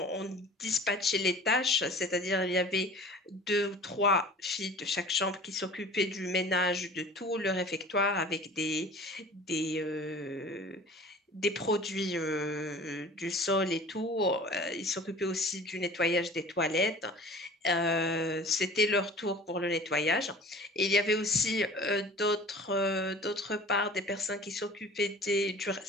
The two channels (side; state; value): both; normal; correlation 0.43